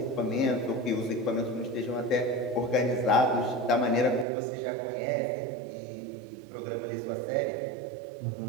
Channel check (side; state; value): left; drops out; at 4.2 s